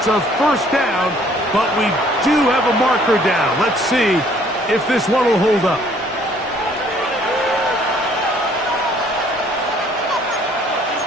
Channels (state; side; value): normal; both; correlation 0.60